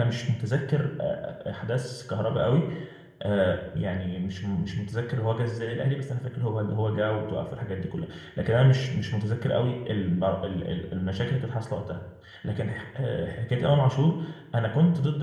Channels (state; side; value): identical; both; correlation 1.00